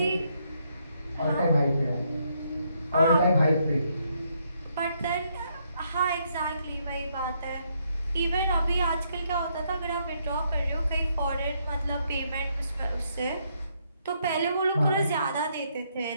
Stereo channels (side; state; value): both; inverted; correlation -0.74